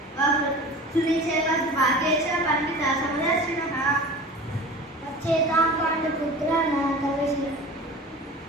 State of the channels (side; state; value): both; normal; correlation 0.37